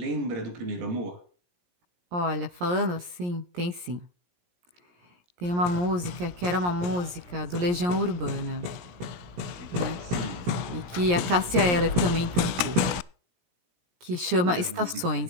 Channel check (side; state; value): left; late; 17 ms